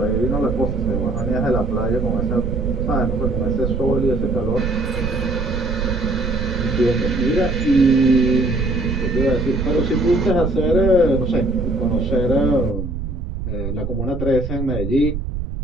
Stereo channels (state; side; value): noise; right; rumble, 5 dB below the sound